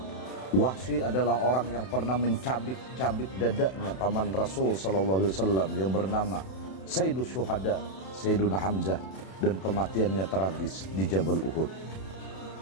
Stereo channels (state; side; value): late; right; 31 ms